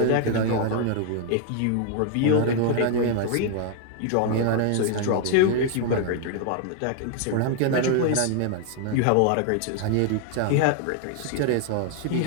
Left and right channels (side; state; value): both; different; correlation 0.00